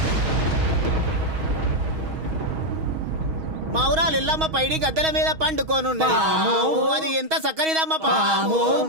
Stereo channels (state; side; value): late; left; 6.3 ms